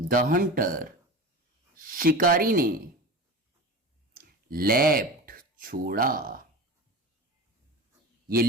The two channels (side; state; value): both; normal; correlation 0.31